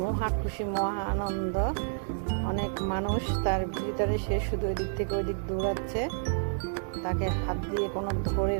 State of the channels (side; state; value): left; silent; 58 dB below the other